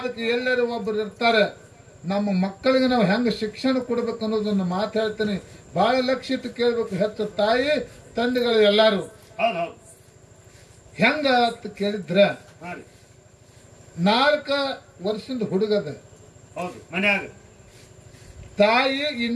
ಎಲ್ಲರೂ ಒಬ್ಬರು ಇರ್ತಾರೆ. ನಮ್ಮ ಮಕ್ಕಳಿಗೆ ನಾವು ಹೆಂಗ ಶಿಕ್ಷಣ ಕೊಡ್ಬೇಕು ಅನ್ನೋದನ್ನ ಮಾತಾಡ್ತೀನಿ. ಬಹಳ ಲಕ್ಷ್ಯ ಇಟ್ಟು ಕೇಳ್ಬೇಕು. ಹೆಚ್ಚು ತಾಯಿ ತಂದೆಗಳು ಎಲ್ಲಾರು ಹೌದು ಹೌದು. ಹೆಂಗ ಅಂತ ಕೇಳಿದ್ರ, ಹಾ ರೀ 4 ವರ್ಷದ ಹುಡುಗದ. ಹೌದು. ಮನ್ಯಾಗ ತಾಯಿ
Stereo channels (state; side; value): identical; both; correlation 1.00